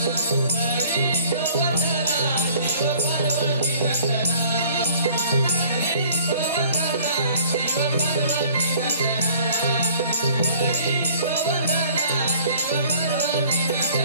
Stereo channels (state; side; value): inverted; both; correlation -0.53